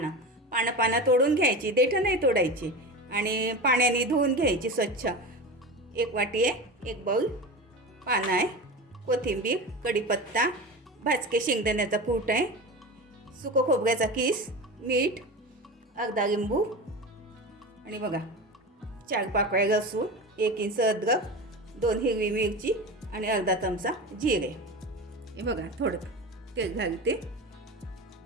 तोडून घ्यायची, देठं नाही तोडायची, आणि पाण्याने धुवून घ्यायची स्वच्छ. एक वाटी आहे, एक बाऊल पानं आहे, कोथिंबीर, कढीपत्ता, भाजके शेंगदाण्याचा कूट आहे, सुकं खोबऱ्याचा किस, मीठ, अर्धा लिंबू, आणि बघा 4 पाकळ्या लसूण, 1 इंच अद्रक, 2 हिरवी मिरची आणि अर्धा चमचा जिरे. हे बघा, थोडं तेल घालते.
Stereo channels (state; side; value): normal; both; correlation 0.27